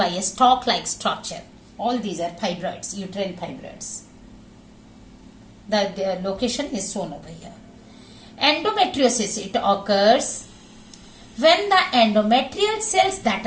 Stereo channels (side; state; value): both; identical; correlation 1.00